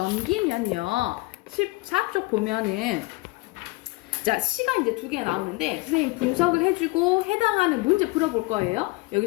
14쪽 보면은 자, 시가 이제 두 개가 나오는데 선생님 분석을 해주고 해당하는 문제 풀어볼 거예요.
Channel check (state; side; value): quieter; right; 23.2 dB